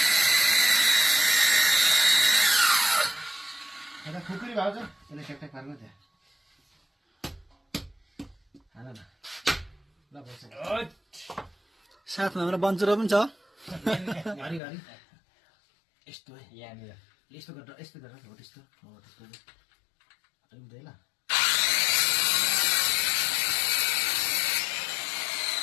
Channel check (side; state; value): right; drops out; at 14.6 s